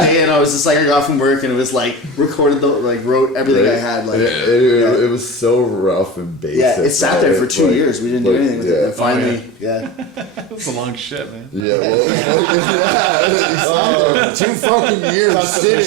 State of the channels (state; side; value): drops out; left; at 11.7 s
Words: day and I was just like I got from work and it was like recorded wrote everything I had like It was so rough and basic. yeah it sat there for right? 2 Like- years. We didn't do like, anything with it. yeah. And finally, That's a long shit, man. Yeah, well, 2 fucking years. constipation